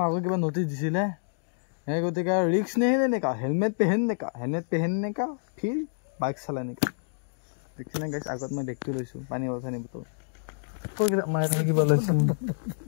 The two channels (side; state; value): right; silent; digital silence